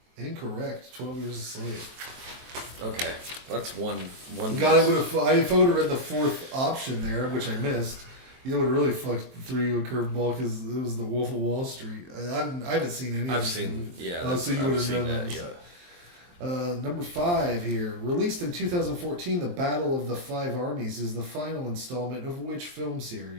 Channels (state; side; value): late; left; 23 ms